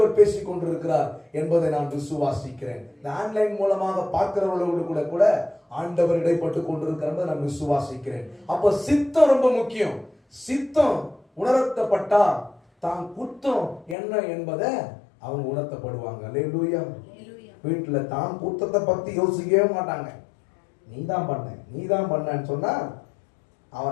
பேசிக் கொண்டிருக்கிறார் என்பதை நான் விசுவாசிக்கிறேன். இந்த ஆன்லைன் மூலமாக பார்க்கிறவர்களோடு கூட கூட ஆண்டவர் இடைப்பட்டு கொண்டிருக்கிறத நான் விசுவாசிக்கிறேன். அப்ப சித்தம் ரொம்ப முக்கியம். சித்தம் உணர்த்தப்பட்டா தான் குத்தம் என்ன என்பதை அவங்க உணர்த்தப்படுவாங்க. அல்லேலூயா. வீட்டுல தான் குத்தத்தை பத்தி யோசிக்கவே மாட்டாங்க. நீதான் பண்ண நீதான் பண்ணன்னு சொன்னா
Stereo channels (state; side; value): drops out; right; at 14.0 s